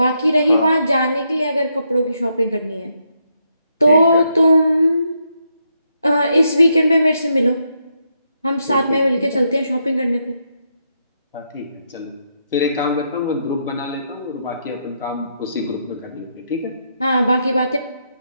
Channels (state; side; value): inverted; both; correlation -0.79